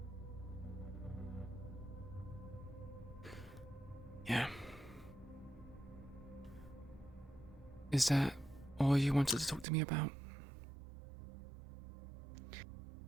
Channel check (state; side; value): drops out; left; at 9.7 s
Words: Yeah. Is that all you wanted to talk to me about?